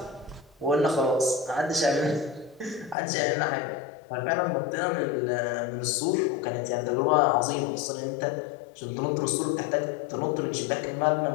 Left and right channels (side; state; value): right; drops out; at 3.0 s